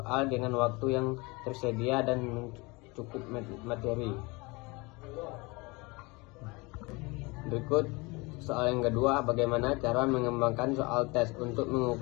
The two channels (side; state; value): right; quieter; 25.8 dB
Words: dengan waktu yang tersedia dan cukup materi. Berikut soal yang kedua, bagaimana cara mengembangkan soal tes untuk